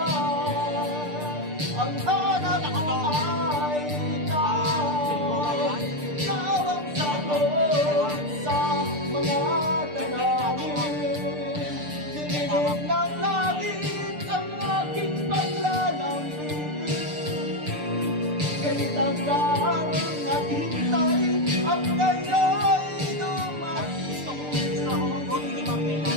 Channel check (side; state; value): left; late; 6.7 ms